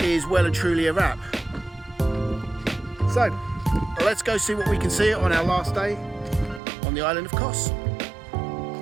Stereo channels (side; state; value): left; drops out; at 6.6 s